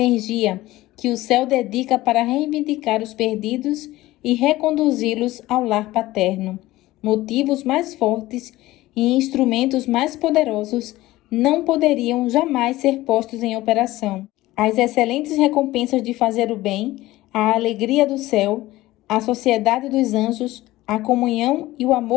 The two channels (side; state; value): right; quieter; 17.3 dB